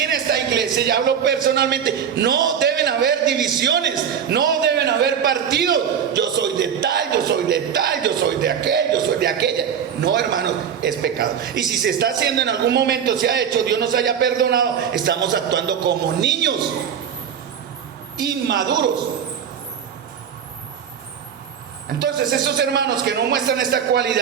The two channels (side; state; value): left; quieter; 8.0 dB